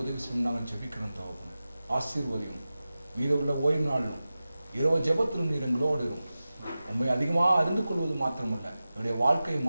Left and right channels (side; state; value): both; inverted; correlation -0.95